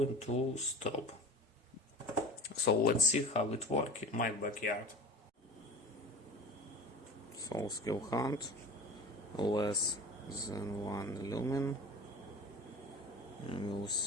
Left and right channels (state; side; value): normal; both; correlation 0.35